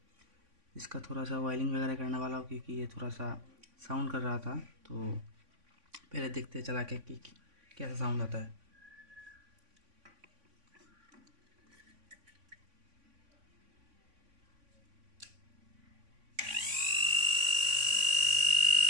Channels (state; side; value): late; left; 3.5 ms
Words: इसका थोड़ा सा वायरिंग वगैरह करने वाला हूँ, क्योंकि ये थोड़ा सा साउंड कर रहा था। तो पहले देखते चला के कि कैसा साउंड आता है।